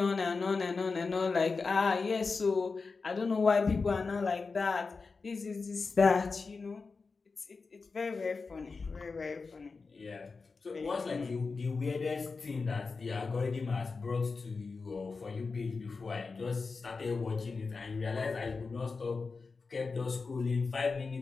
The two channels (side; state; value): right; quieter; 4.4 dB